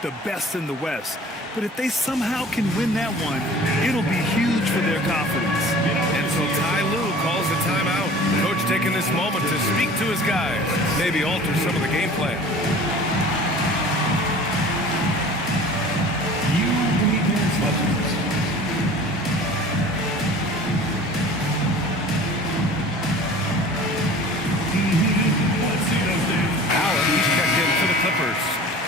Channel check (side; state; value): both; normal; correlation 0.44